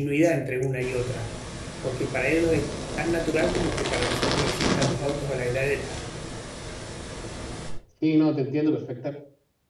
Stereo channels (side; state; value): both; identical; correlation 1.00